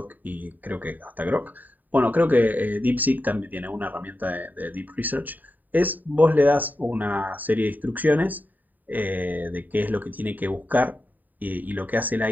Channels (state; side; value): late; left; 0.085 ms